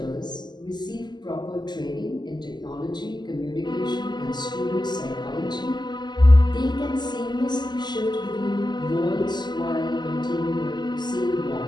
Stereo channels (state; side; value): late; right; 0.21 ms